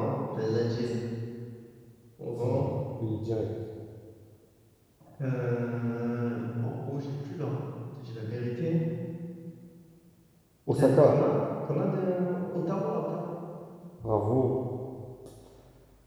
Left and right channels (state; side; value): identical; both; correlation 1.00